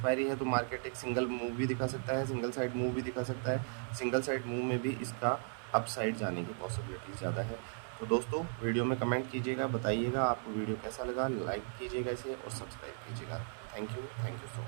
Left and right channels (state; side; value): silent; left; 54 dB below the other